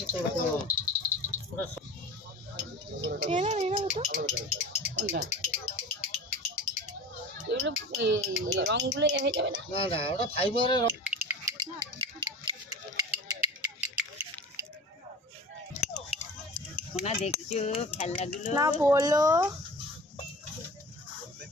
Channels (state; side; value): normal; both; correlation 0.37